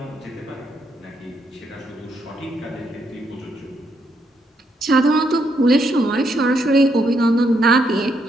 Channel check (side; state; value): both; normal; correlation 0.76